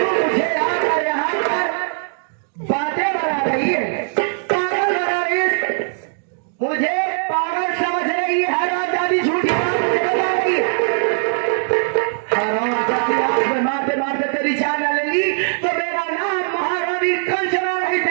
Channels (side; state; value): left; silent; digital silence